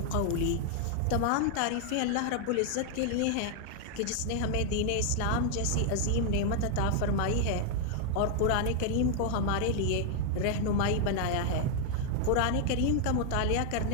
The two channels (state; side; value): different; both; correlation 0.00